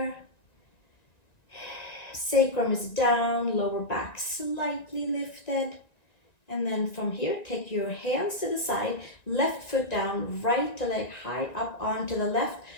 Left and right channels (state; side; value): late; right; 1.9 ms